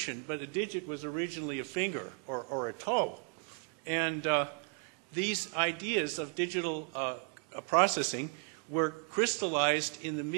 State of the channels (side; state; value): left; quieter; 36.3 dB